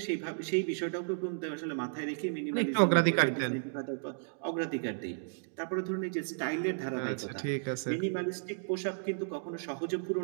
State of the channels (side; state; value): left; silent; digital silence